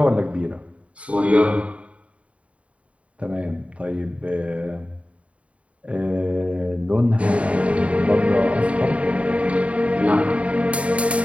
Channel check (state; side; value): late; left; 0.064 ms